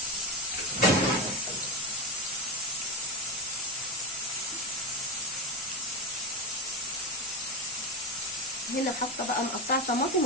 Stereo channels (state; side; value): normal; both; correlation 0.16